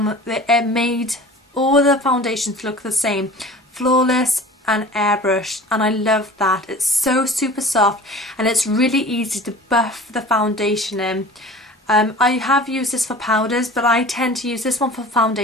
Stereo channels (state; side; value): normal; both; correlation 0.41